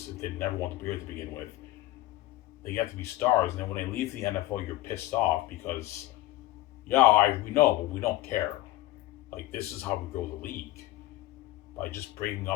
if they never want to be here to begin with. They get to be stars, and then when they leave the NFL, you're pissed off because, yeah, we know, but we don't care. Like, this is how we grow the league. By just bringing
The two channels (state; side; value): quieter; right; 16.5 dB